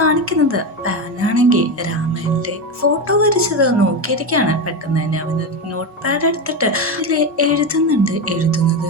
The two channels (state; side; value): normal; both; correlation 0.15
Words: പാനാണെങ്കിൽ രാമന്റെ ഫോട്ടോ വരച്ചത് നോക്കിയിരിക്കുകയാണ്. പെട്ടെന്ന് തന്നെ അവന് നോട്ട് പാഡ് എടുത്തിട്ട് അതിൽ എഴുതുന്നത്